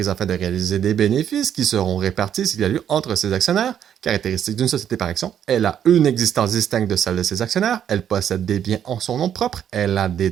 afin de réaliser des bénéfices qui seront répartis s'il y a lieu entre ses actionnaires. Caractéristique d'une société par action, elle a une existence distincte de celle de ses actionnaires, elle possède des biens en son nom propre, elle a des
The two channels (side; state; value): left; quieter; 9.4 dB